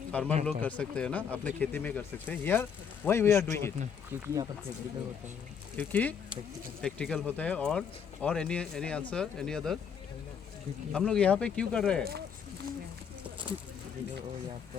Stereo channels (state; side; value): quieter; right; 7.2 dB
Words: फार्मर लोग कर सकते हैं ना, अपने खेती में कर सकते हैं. Here why we are doing it? क्योंकि यहाँ पर प्रैक्टिकल होता है. क्योंकि प्रैक्टिकल होता है और any answer any other? हम लोग यहाँ पे क्यों कर रहे हैं? और यहाँ